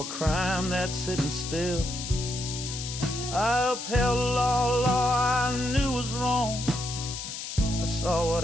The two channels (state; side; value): noise; left; hiss, 7 dB below the sound